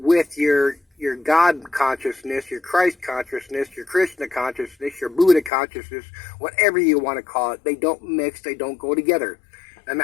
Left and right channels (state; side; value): drops out; right; at 5.5 s